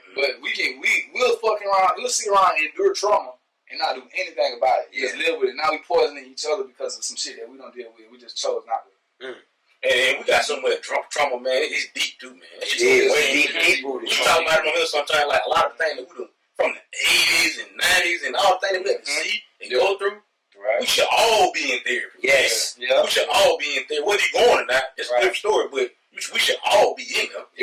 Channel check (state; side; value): identical; both; correlation 1.00